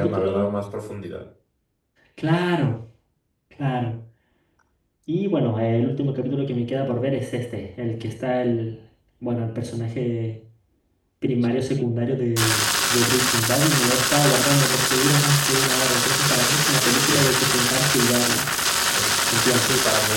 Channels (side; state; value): both; identical; correlation 1.00